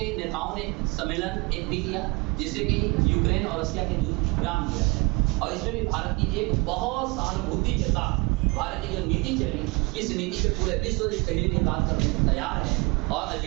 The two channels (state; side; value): quieter; left; 27.7 dB